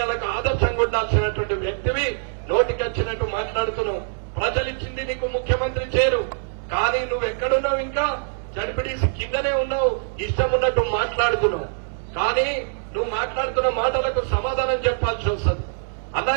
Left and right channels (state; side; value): silent; left; 63 dB below the other